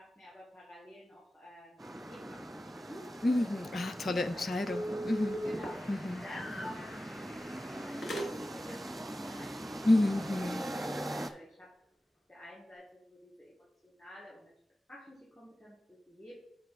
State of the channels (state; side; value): normal; both; correlation 0.94